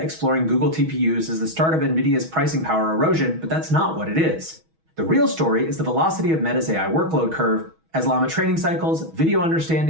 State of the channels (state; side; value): late; left; 6.2 ms